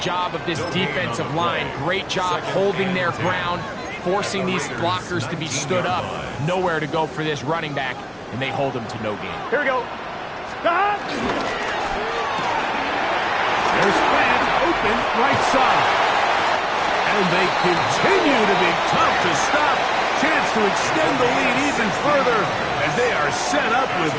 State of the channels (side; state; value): both; identical; correlation 1.00